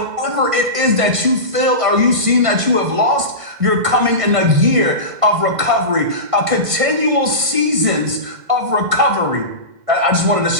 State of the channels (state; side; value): late; left; 1.6 ms